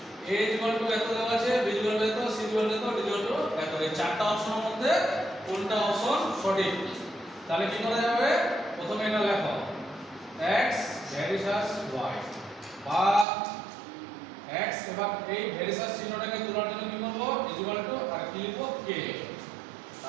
a এত দেওয়া আছে, b এত, c এত, d এত। এই চারটা অপশনের মধ্যে কোনটা অপশন সঠিক? তাহলে কি করা যাবে? প্রথমে এটা লেখো x ভার্সাস y, বা x এবং এই ভার্সাস চিহ্নটাকে তোলার জন্য কি করব? ইকুয়াল টু আর কি লিখব? k,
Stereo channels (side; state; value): left; drops out; at 13.2 s